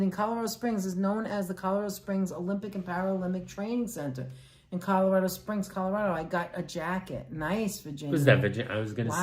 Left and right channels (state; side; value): identical; both; correlation 1.00